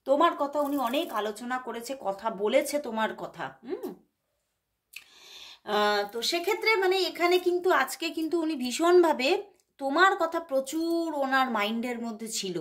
তোমার কথা উনি অনেক আলোচনা করেছে, কথা বলেছে তোমার কথা। তো সেক্ষেত্রে মানে এখানে কিন্তু আজকে কিন্তু উনি ভীষণভাবে তোমার কথা প্রচুর ওনার মাইন্ডের মধ্যে ছিল,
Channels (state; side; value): identical; both; correlation 1.00